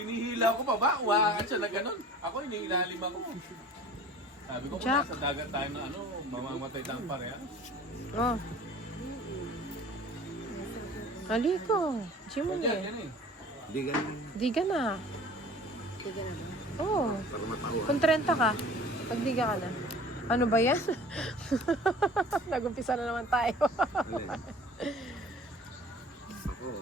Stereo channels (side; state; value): both; normal; correlation 0.45